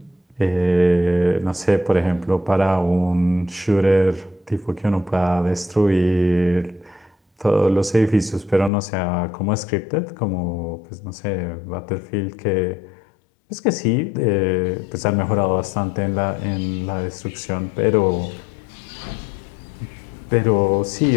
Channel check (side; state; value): right; drops out; at 8.7 s